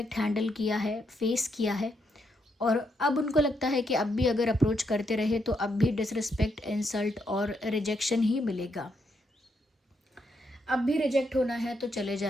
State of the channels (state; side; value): normal; both; correlation 0.78